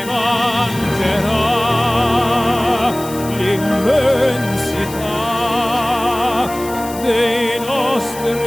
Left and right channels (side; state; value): left; noise; hiss, 14 dB below the sound